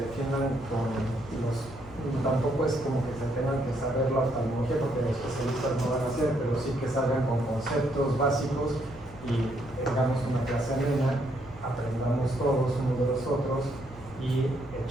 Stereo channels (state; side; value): normal; both; correlation 0.72